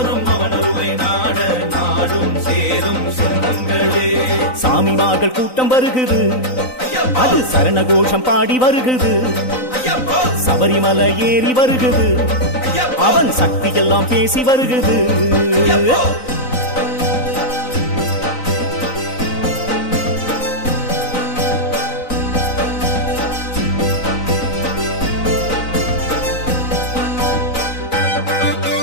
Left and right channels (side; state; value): right; late; 3.9 ms